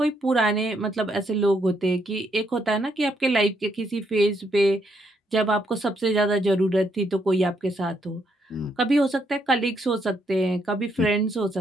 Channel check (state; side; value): normal; both; correlation 0.75